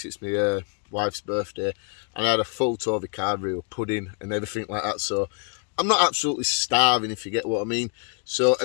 it's my wife's birthday, and I had a full Tovey Carvery with pudding and everything like that, so I'm not absolutely starving, if you get what I mean. So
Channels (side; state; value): right; quieter; 38.9 dB